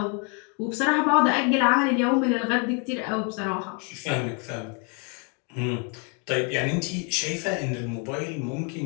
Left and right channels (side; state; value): right; quieter; 34.9 dB